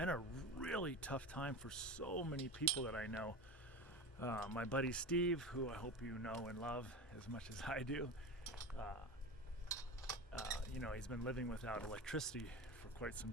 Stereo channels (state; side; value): normal; both; correlation 0.27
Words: a really tough time for so many people that I know. My buddy Steve, who I hope you know and love as much as I do, he's been living without electricity for quite some